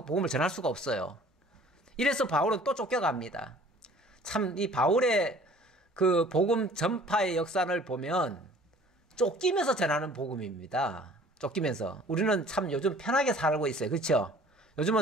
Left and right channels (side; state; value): both; normal; correlation 0.51